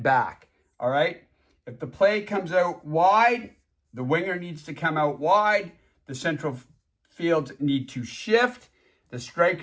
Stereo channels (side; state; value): both; identical; correlation 1.00